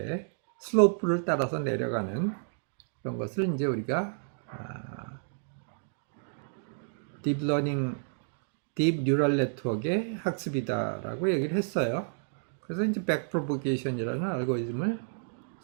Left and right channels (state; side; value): silent; left; digital silence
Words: 슬로프를 따라서 내려가는 그런 것을 이제 우리가 딥 뉴럴 네트워크의 학습이다라고 얘기를 했어요. 그래서 이제 백프로보게이션이라는 알고리즘을